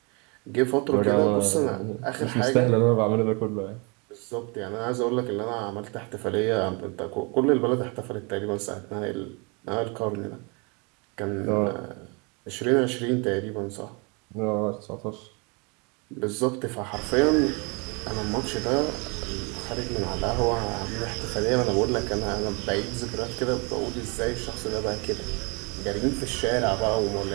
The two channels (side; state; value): left; quieter; 31.4 dB